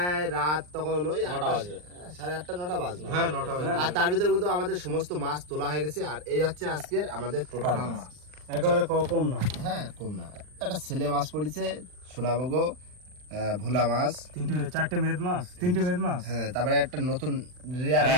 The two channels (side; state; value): left; late; 39 ms